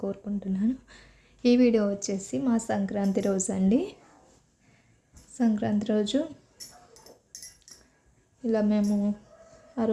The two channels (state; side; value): identical; both; correlation 1.00